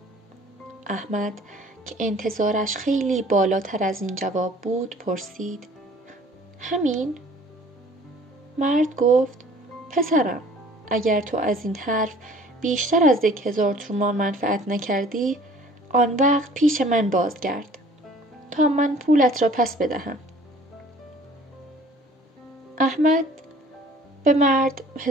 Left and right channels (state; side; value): normal; both; correlation 0.51